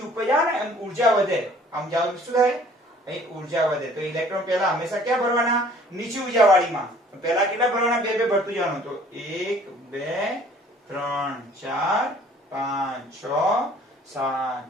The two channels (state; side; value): normal; both; correlation 0.54